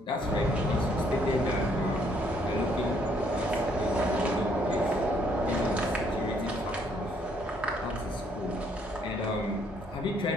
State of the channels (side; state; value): both; normal; correlation 0.67